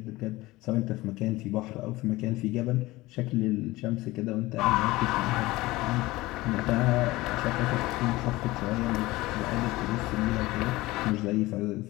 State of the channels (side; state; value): right; quieter; 19.5 dB